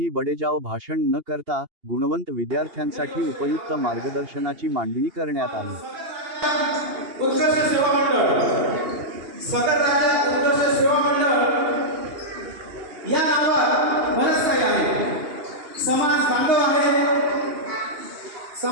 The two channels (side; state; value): left; late; 2.8 ms